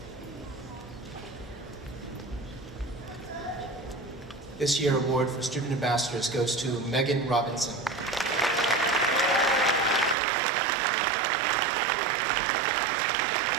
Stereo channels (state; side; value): drops out; left; at 10.2 s